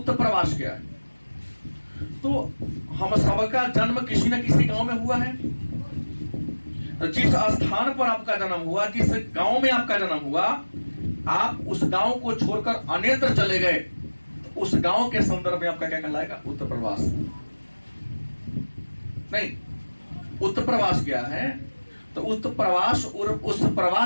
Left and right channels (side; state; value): both; inverted; correlation -1.00